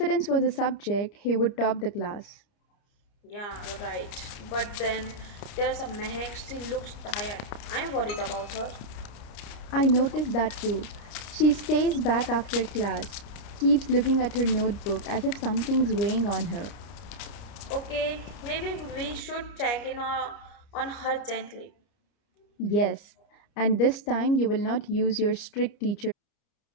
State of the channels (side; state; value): right; late; 29 ms